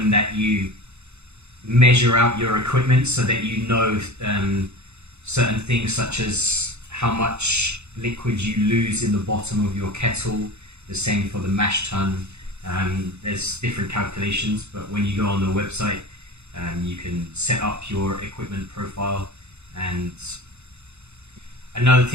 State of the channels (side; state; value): left; late; 0.81 ms